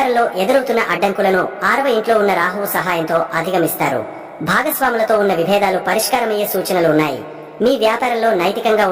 ఎదురవుతున్న అడ్డంకులను 6వ ఇంట్లో ఉన్న రాహువు సహాయంతో అధిగమిస్తారు. భాగస్వాములతో ఉన్న విభేదాలు పరిష్కారమయ్యే సూచనలు ఉన్నాయి. మీ వ్యాపారంలో నైతికంగా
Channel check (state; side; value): identical; both; correlation 1.00